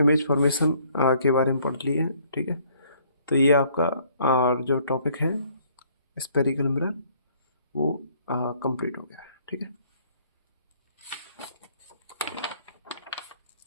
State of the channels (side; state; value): both; inverted; correlation -0.62